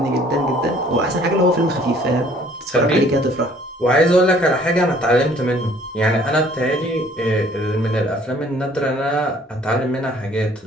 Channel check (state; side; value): normal; both; correlation 0.57